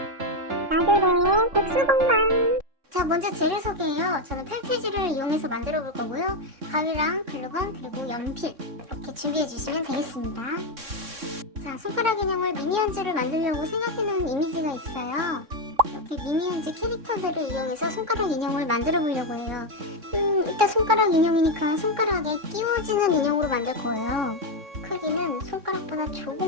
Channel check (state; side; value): late; left; 3.6 ms